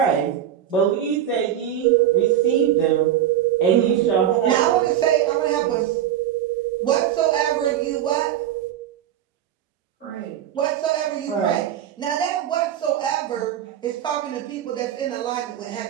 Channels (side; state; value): left; quieter; 10.7 dB